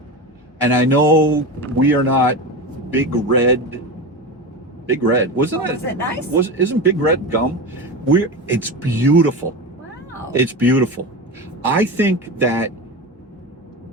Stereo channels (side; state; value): both; normal; correlation 0.24